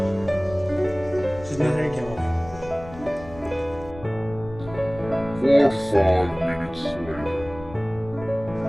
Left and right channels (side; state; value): left; noise; rumble, 17 dB below the sound